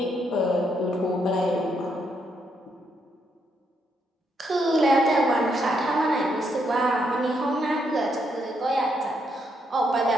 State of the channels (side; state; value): both; normal; correlation 0.77